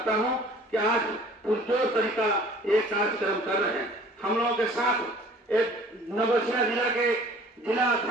हूं कि आज पुरजोर तरीका एक कार्यक्रम कर रहे हैं। हम लोगों के साथ एक नवसिया जिला के जिला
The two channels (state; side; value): normal; both; correlation 0.50